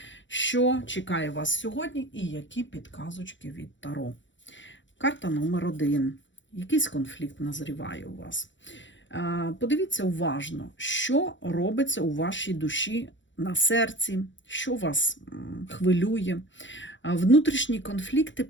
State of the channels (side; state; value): right; late; 0.54 ms